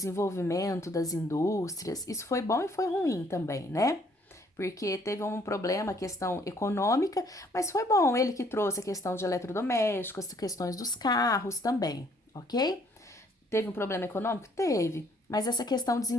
das indústrias. Isso foi bom e foi ruim também, né? Porque teve um problema, a questão econômica, mas foi bom. Ele que trouxe a questão de eletrodomésticos, as questões dos carros também, ok? Teve um problema econômico? Teve. Mas essa questão de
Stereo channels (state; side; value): normal; both; correlation 0.63